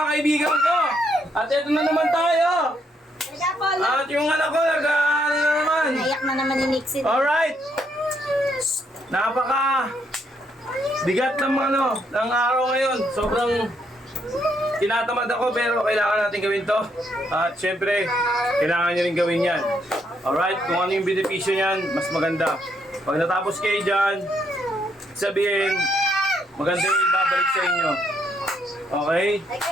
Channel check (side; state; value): both; normal; correlation 0.74